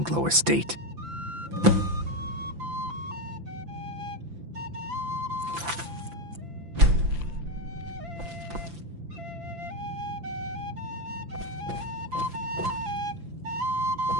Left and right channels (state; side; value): late; left; 5.9 ms